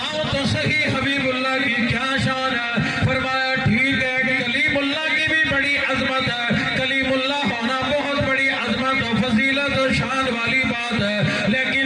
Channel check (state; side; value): identical; both; correlation 1.00